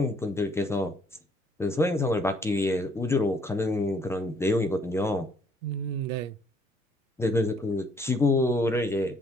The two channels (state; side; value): normal; both; correlation 0.65